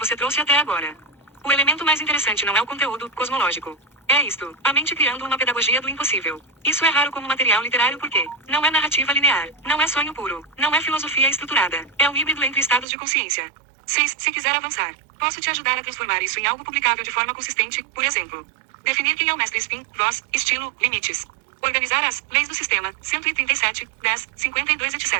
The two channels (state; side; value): drops out; left; at 12.9 s